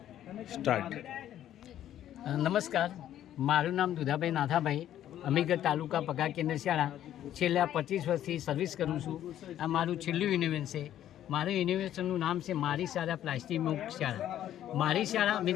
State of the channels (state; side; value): quieter; right; 11.6 dB